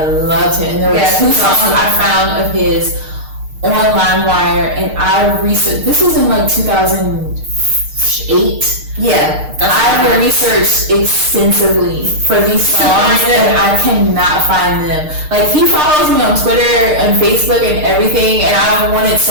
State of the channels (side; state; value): left; late; 6.6 ms